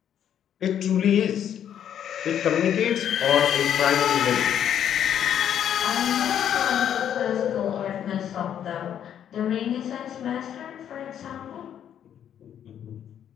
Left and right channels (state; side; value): quieter; right; 9.6 dB